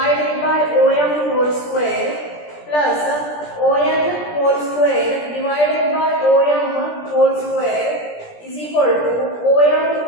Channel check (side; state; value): right; late; 17 ms